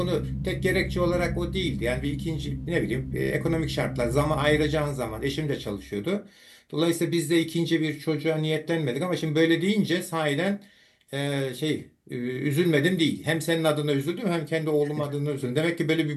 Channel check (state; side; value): identical; both; correlation 1.00